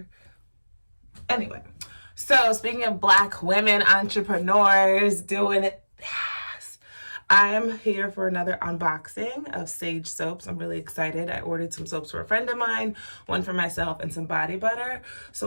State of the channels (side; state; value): both; inverted; correlation -1.00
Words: Anyway, so speaking of Black women entrepreneurs doing it fast, I'm here for another unboxing of Saige soaps. I'm really excited. I ordered some soaps for a friend of mine, one for myself, and some body butter.